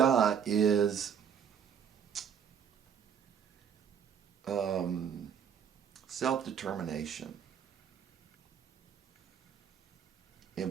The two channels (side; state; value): left; quieter; 7.8 dB